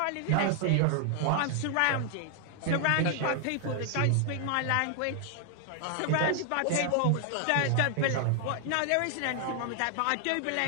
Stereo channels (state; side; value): different; both; correlation 0.00